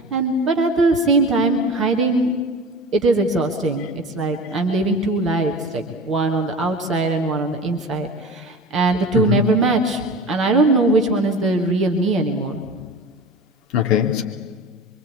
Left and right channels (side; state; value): both; normal; correlation 0.34